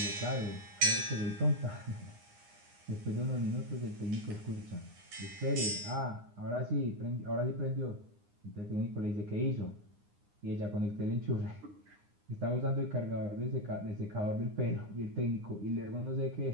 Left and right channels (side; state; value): left; late; 9.8 ms